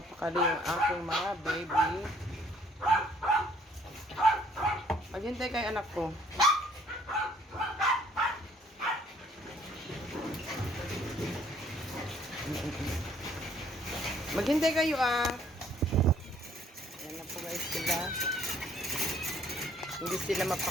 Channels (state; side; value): normal; both; correlation 0.62